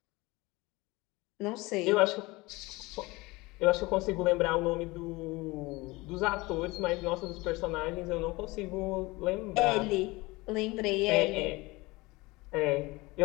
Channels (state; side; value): quieter; right; 22.5 dB